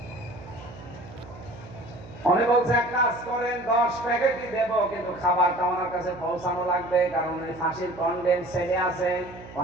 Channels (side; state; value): right; noise; hum, 17 dB below the sound